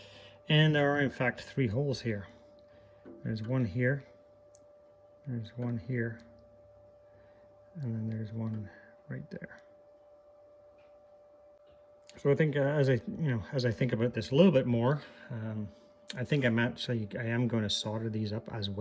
and there are in fact 3 holes here. There's one here, there's one here, and then there's one right there. So I think as I think about this a little bit more, I think I am going to solder these up as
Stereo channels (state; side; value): identical; both; correlation 1.00